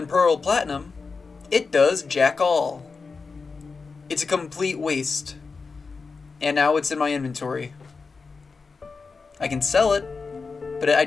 Pearl, Platinum, it does jack all. It's a complete waste. And now it's in my inventory. I can sell it, but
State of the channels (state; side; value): quieter; right; 4.6 dB